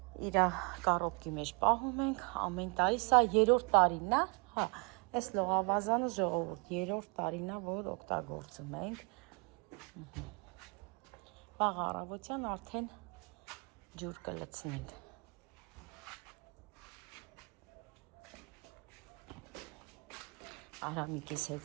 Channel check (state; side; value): quieter; left; 32.6 dB